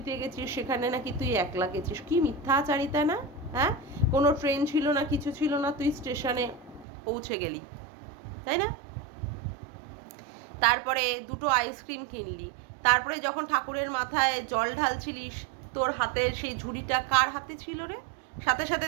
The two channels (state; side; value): drops out; left; at 6.9 s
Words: গেছিস, সেখানে নাকি তুই একলা গেছিস। কি মিথ্যাচারিতা না, হ্যাঁ? কোনো ট্রেন ছিল না, কিছু ছিল না, তুই স্টেশনে পৌঁছে গেলি, তাই না? তারপরে দুটো আইসক্রিম কিনলি, তারপরে যখন ঠাকুরের মাথায় জল ঢালছিলিস, তোর হাতের সেই ঝুড়িটা কার হাতে ছিল রে? সাথে সাথে